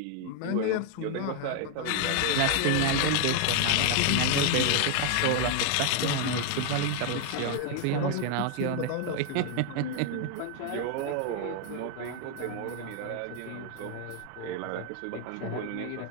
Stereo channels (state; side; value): different; both; correlation 0.00